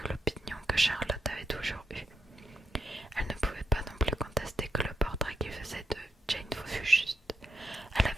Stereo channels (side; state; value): both; normal; correlation 0.82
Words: l'opinion que Charlotte avait toujours eue. Elle ne pouvait pas non plus contester que le portrait qu'il faisait de Jane fût juste. Elle